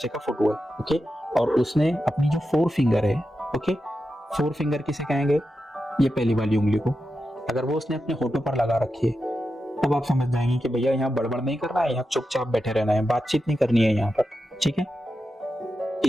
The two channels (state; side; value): normal; both; correlation 0.89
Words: का फोटो है, ओके, और उसने अपनी जो 4 फिंगर है, ओके, 4 फिंगर किसे कहेंगे? ये पहली वाली उंगली को। अगर वो उसने अपने होठों पर लगा रखी है तब आप समझ जाएंगे कि भैया यहाँ बड़बड़ नहीं करना है, यहाँ चुपचाप बैठे रहना है, बातचीत नहीं करनी है यहाँ पर, ठीक है।